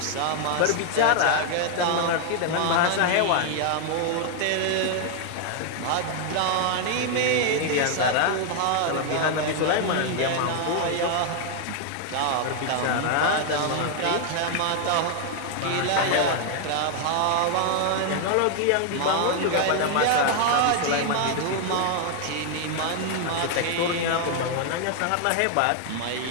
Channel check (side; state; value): both; different; correlation 0.00